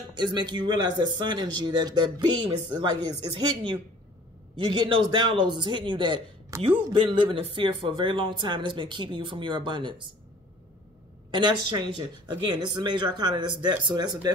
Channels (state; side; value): normal; both; correlation 0.50